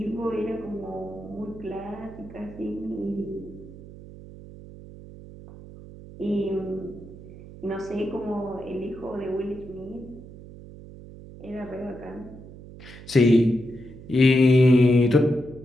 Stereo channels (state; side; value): noise; right; hum, 16 dB below the sound